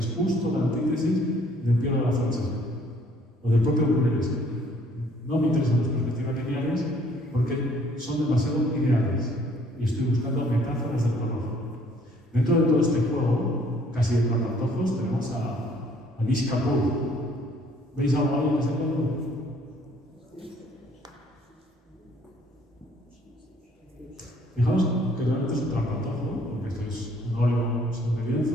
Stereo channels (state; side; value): normal; both; correlation 0.61